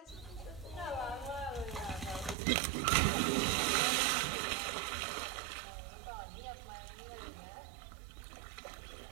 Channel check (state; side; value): drops out; left; at 2.4 s